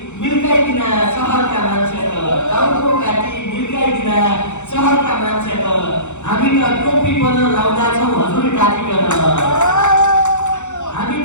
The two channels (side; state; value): right; late; 0.84 ms